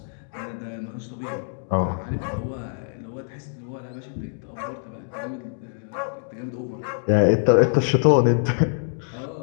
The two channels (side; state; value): right; silent; digital silence